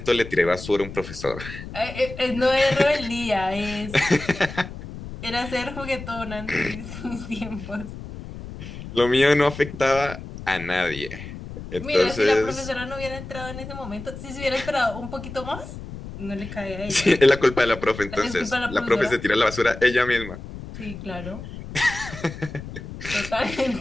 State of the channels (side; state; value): left; noise; rumble, 11 dB below the sound